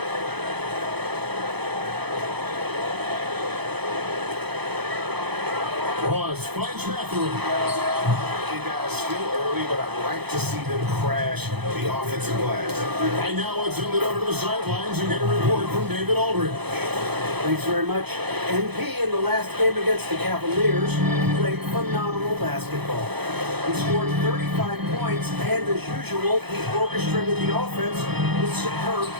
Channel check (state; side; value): late; left; 0.98 ms